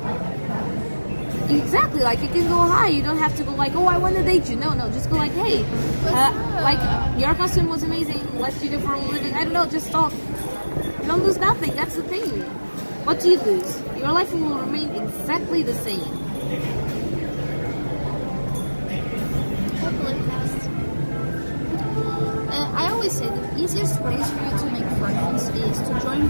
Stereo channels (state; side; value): inverted; both; correlation -1.00